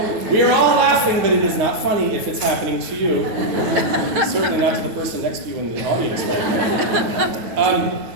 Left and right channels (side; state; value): left; late; 9.2 ms